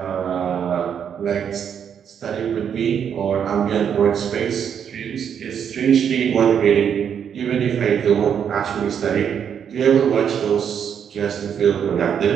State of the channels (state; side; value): quieter; left; 8.0 dB